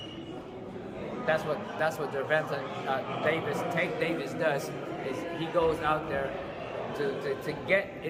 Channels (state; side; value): identical; both; correlation 1.00